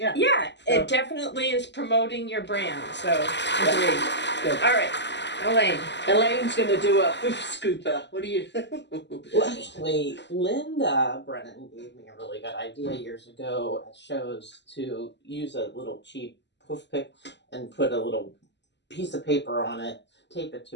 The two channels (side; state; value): right; late; 0.51 ms